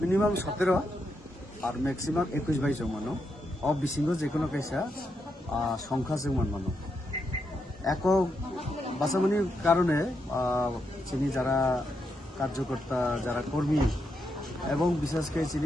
17 আর maximum 21-22 জন মানুষ অবিসিঙ্গ যে কোনো কাইসা সংখ্যা যে মানুষ একক বাসামানির কারণে চিনি যারা কার্যকর্তা যারা কর্মী এবং বিশেষ করে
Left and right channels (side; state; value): both; normal; correlation 0.82